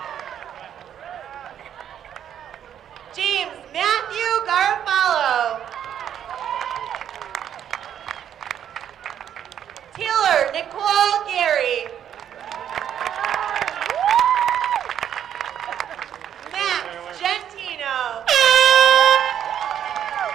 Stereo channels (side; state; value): left; quieter; 9.6 dB